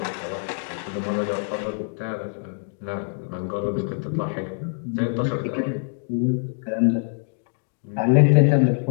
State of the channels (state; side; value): silent; right; digital silence